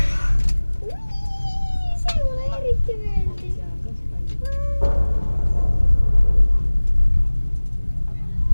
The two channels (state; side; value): inverted; both; correlation -1.00